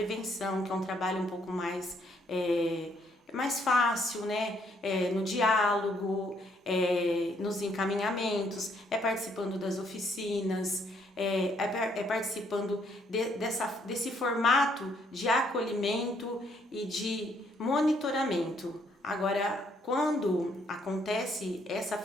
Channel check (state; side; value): normal; both; correlation 0.69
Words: que é um trabalho um pouco mais fácil, né? No diálogo, nos encaminhamentos, participando das oficinas, participando desse formato de acolhimento e de monitoramento. Agora, quando acontece essa